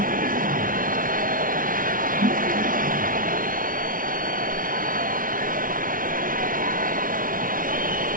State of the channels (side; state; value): left; late; 0.40 ms